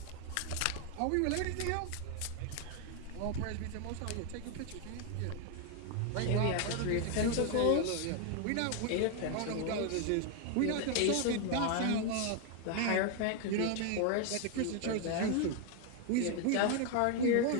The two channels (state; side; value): different; both; correlation 0.01